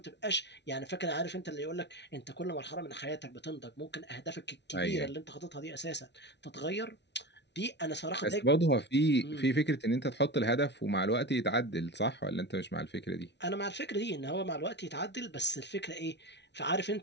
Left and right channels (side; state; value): right; late; 0.50 ms